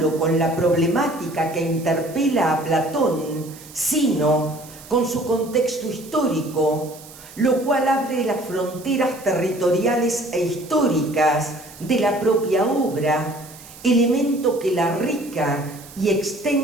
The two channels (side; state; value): right; noise; hiss, 19 dB below the sound